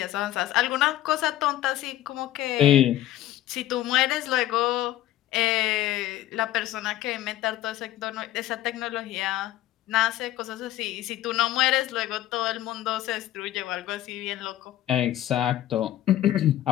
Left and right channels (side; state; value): right; quieter; 13.9 dB